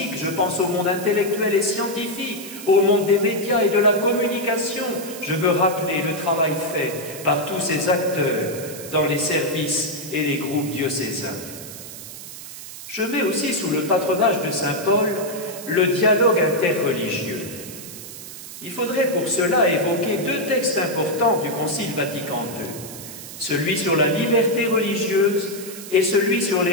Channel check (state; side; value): noise; right; hiss, 13 dB below the sound